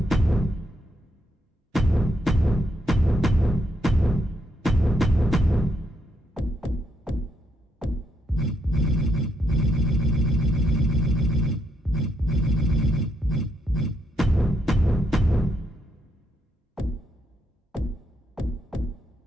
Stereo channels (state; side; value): normal; both; correlation 0.78